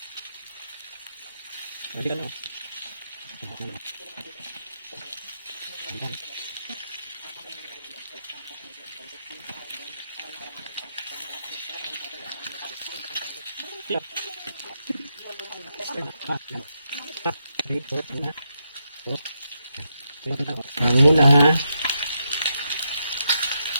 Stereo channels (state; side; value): inverted; both; correlation -0.82